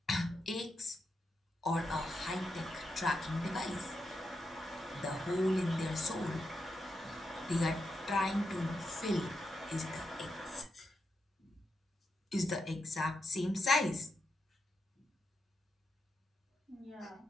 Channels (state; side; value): normal; both; correlation 0.85